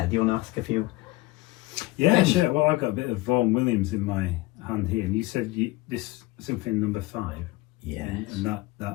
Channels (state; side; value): quieter; right; 20.3 dB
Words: do you want to ask a few? Yeah, things? sure. Well, I've got a bit of Vaughan Williams in my hand here, and you said this symphony number 5. Yes. And